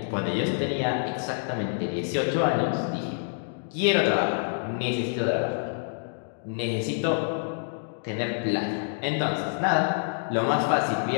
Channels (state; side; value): silent; right; digital silence